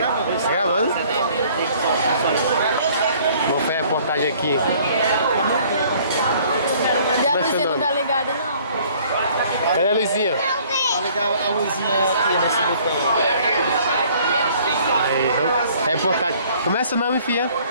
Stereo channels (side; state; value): both; inverted; correlation -0.57